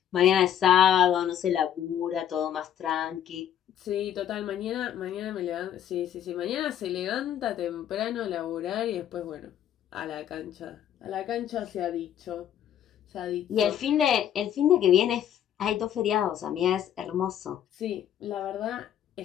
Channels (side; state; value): right; quieter; 10.2 dB